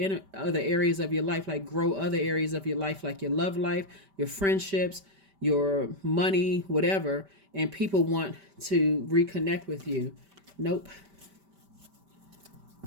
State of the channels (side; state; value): left; late; 5.1 ms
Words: areas of your life, like grow other areas of your life, like your love life, your friendships, your money, whatever. And people want to reconnect with you. Nope.